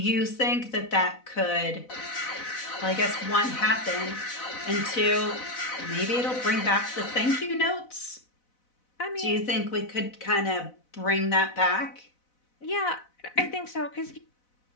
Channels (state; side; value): late; right; 4.0 ms